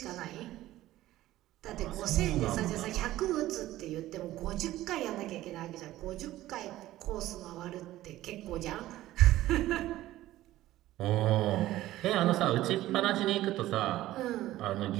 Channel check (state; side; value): quieter; left; 15.3 dB